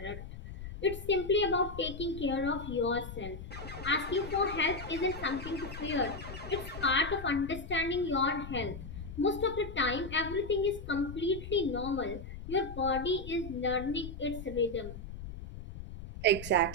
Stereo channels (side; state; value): left; noise; rumble, 11 dB below the sound